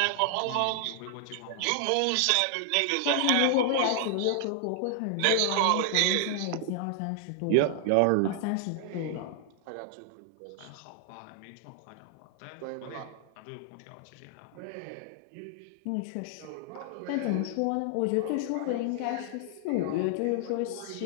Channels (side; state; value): both; different; correlation 0.00